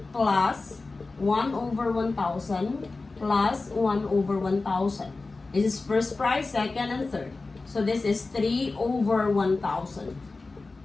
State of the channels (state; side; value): quieter; right; 3.6 dB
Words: plus 1 over 1,000 plus 1 over 1,000. This is first prize, second, and third. So this is 3 over 1,000.